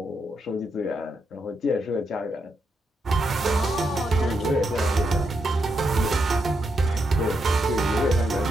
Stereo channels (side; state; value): both; normal; correlation 0.82